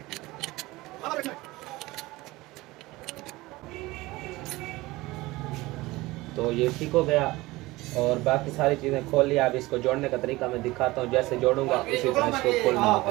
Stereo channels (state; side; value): quieter; left; 20.1 dB